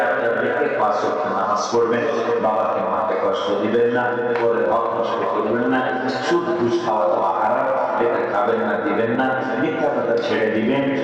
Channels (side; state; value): both; identical; correlation 1.00